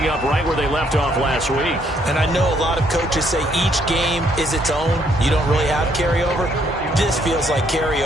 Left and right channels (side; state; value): both; normal; correlation 0.69